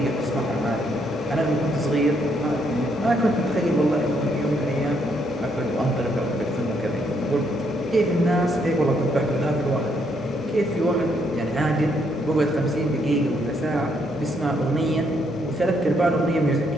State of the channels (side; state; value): both; normal; correlation 0.73